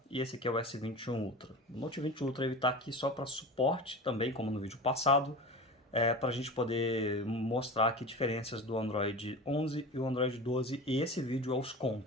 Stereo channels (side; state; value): both; normal; correlation 0.32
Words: E esse aqui é o S21 Ultra. O Note 20 Ultra ele tá aqui só para suporte também, como no vídeo passado, para a gente poder mostrar aqui diferenças do Android 11 e o Android 12, e esse vídeo é os